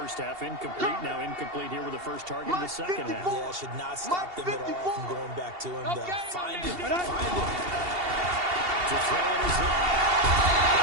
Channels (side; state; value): left; late; 2.8 ms